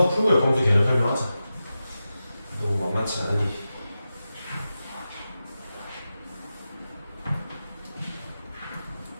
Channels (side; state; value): both; inverted; correlation -0.92